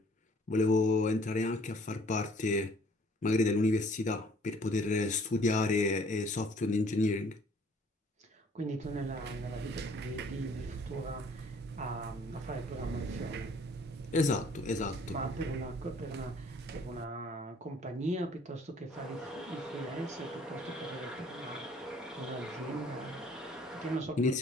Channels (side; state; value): both; normal; correlation 0.58